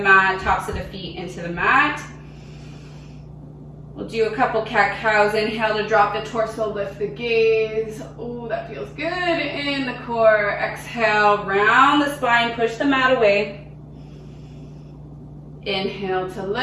tops of the feet into the mat. We'll do a couple cat-cows. Inhale to drop the torso, lift the gaze. Oh, that feels good in the core. Exhale, round the spine, push the mat away. Inhale to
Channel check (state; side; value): identical; both; correlation 1.00